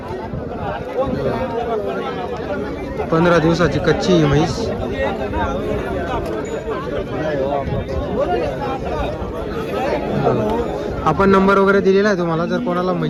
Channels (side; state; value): both; identical; correlation 1.00